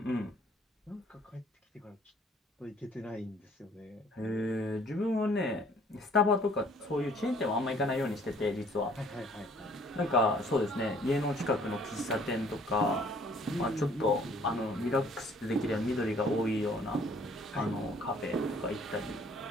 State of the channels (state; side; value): normal; both; correlation 0.58